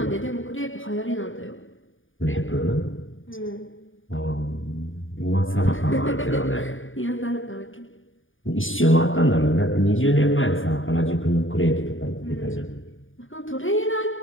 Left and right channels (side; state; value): right; late; 0.58 ms